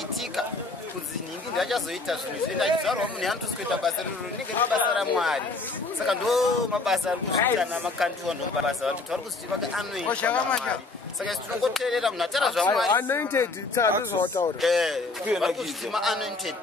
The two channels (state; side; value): quieter; right; 3.5 dB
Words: kunzi nhingi ndachazoita zvinhu zvenda achizvarwa munhu anotosi kuita basa riro rinenge riri basa ramwari saka ndo mabasa ari kuzviita namakandiwa ndo mabasa vantu vari kuzvitiva anointed saka tinongoteerera munhu atara zvamwari anointed tsazvautaura vari kuzviti ma-anointed